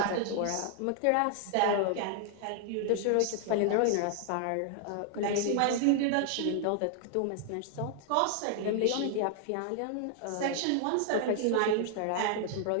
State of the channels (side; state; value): both; different; correlation 0.00